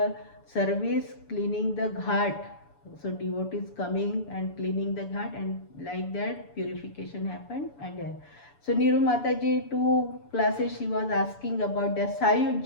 service cleaning the ghat. So devotees coming and cleaning the ghat, and like that purification happened. And so Niru Mataji, 2 classes she was asking about the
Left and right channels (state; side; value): late; right; 7.0 ms